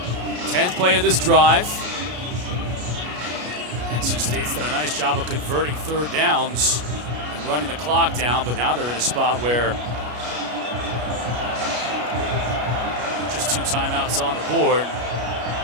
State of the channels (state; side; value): late; left; 33 ms